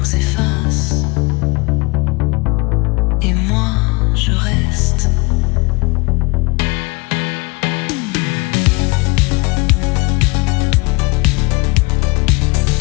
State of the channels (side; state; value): right; quieter; 26.7 dB